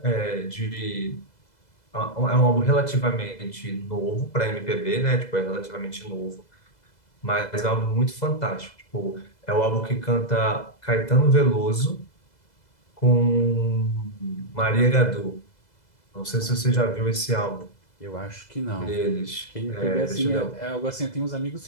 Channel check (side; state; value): right; late; 2.0 ms